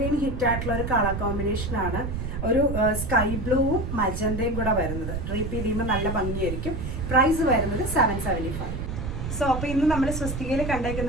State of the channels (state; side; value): noise; right; rumble, 4 dB below the sound